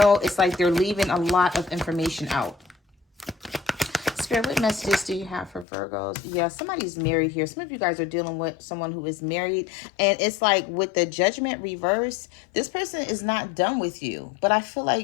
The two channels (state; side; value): drops out; right; at 5.7 s